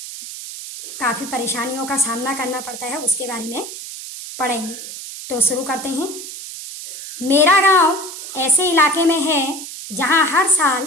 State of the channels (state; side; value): noise; right; hiss, 10 dB below the sound